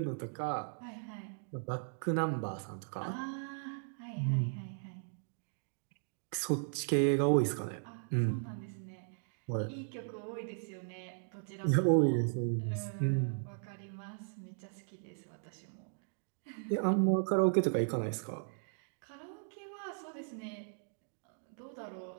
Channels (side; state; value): left; silent; digital silence